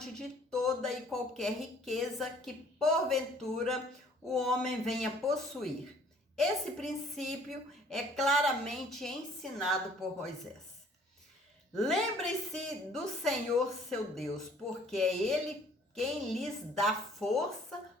de toda e qualquer riqueza que, porventura, o homem venha possuir. Esse princípio é claramente ensinado por Moisés. Lembre-se do Senhor seu Deus, porque é Ele quem lhes dá força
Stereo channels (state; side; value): normal; both; correlation 0.57